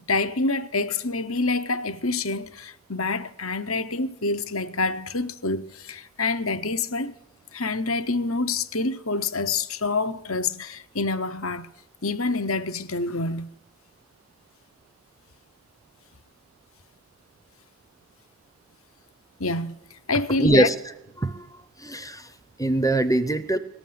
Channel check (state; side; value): normal; both; correlation 0.21